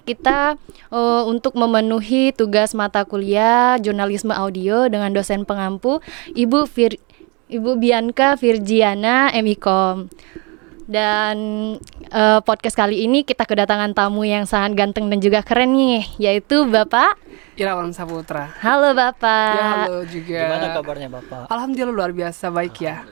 untuk memenuhi tugas mata kuliah jurnalisme audio dengan dosen pengampu Ibu Bianca Virgiana MIKOM. Dan podcast kali ini kita kedatangan tamu yang sangat ganteng dan juga keren nih, yaitu Bapak Irawan Saputra. Halo Bapak. Ya, halo juga. Gimana kabarnya Bapak? Alhamdulillah luar biasa baik ya.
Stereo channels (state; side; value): quieter; left; 30.2 dB